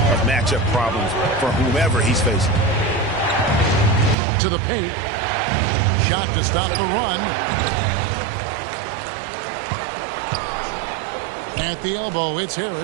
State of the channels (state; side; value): drops out; left; at 4.2 s